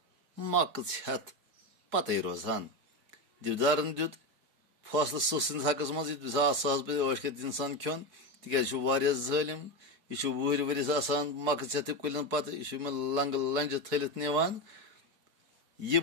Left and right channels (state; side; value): late; left; 4.7 ms